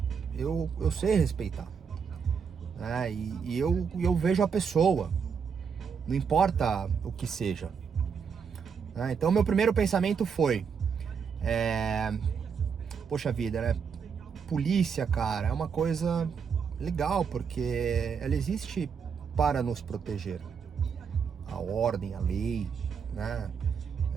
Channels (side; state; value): left; quieter; 6.4 dB